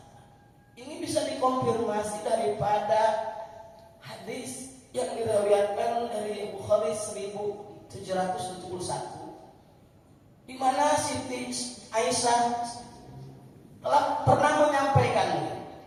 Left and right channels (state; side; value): identical; both; correlation 1.00